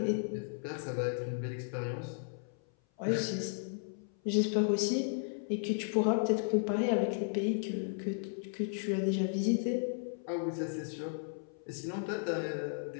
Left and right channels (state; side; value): silent; right; 55 dB below the other